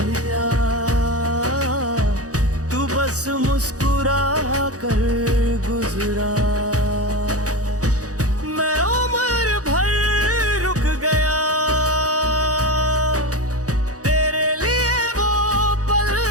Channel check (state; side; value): late; left; 0.67 ms